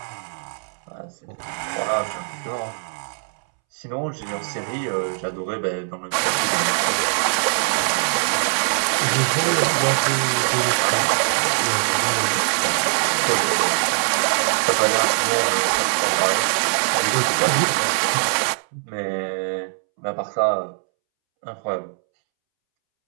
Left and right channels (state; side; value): silent; left; 64 dB below the other